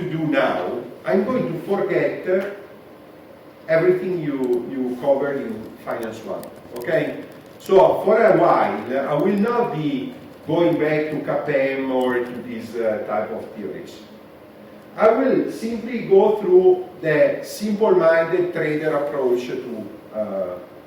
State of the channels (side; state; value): both; identical; correlation 1.00